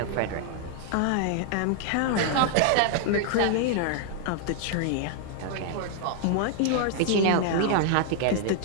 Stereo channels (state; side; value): different; both; correlation 0.00